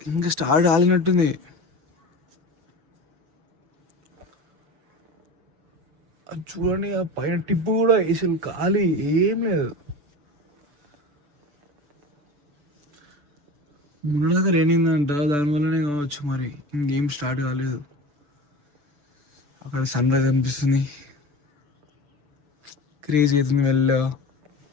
ఇంకా స్టార్ట్ కాలినట్టుంది. అది చూడండి, ఆ పైన టిప్పు కూడా అసలు ఖాళీ ఏం లేదు. మొన్నదాకా రేనిందంట, దానివల్లనే కావచ్చు మరి ఇంకేం స్టార్ట్ కాలేదు. అక్కడ సన్ రైజ్ అనిపిస్తుంది, క్రేజ్ అవుతుంది మెల్లగా.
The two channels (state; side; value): late; left; 6.9 ms